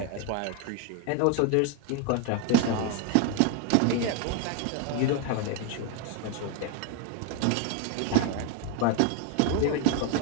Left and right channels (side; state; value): both; different; correlation 0.01